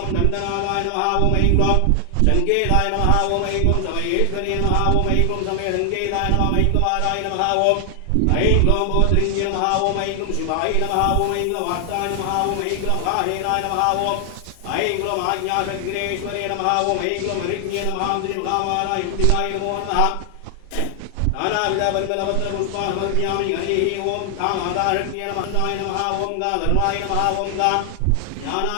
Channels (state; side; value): different; both; correlation 0.00